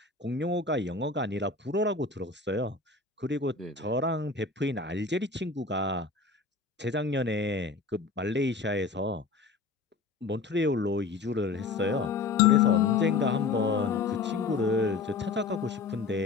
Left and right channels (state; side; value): quieter; right; 4.2 dB